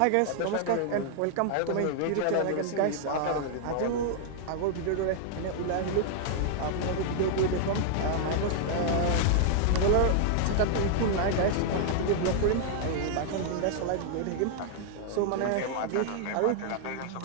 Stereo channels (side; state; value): both; different; correlation -0.01